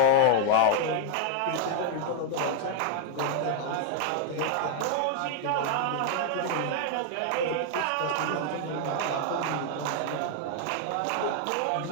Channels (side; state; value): both; different; correlation 0.00